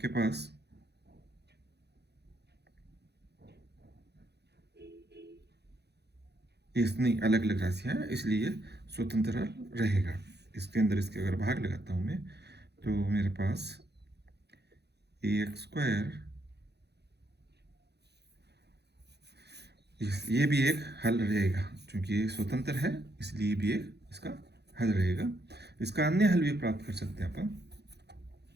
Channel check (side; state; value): left; late; 0.48 ms